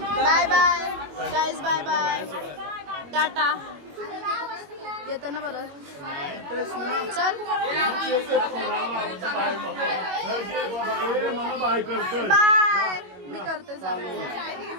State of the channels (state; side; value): late; left; 21 ms